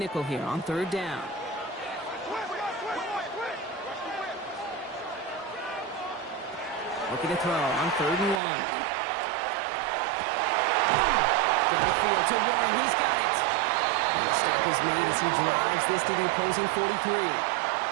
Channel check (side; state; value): left; drops out; at 8.4 s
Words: here on 3rd down. Looking to throw on 3rd and 1. Downfield to Warren. He's got it. And the stop is made as he drives this to the opposing 43.